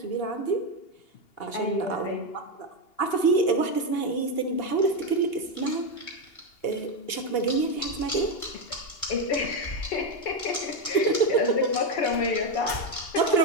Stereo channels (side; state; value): right; late; 2.8 ms